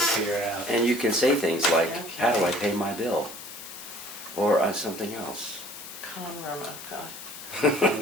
it out. And you can say things like, how do I pay my bill? Or something else. Con room, oh God. Okay.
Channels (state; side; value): noise; left; hiss, 12 dB below the sound